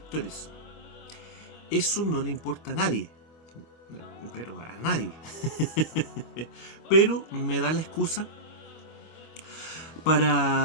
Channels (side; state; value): right; late; 24 ms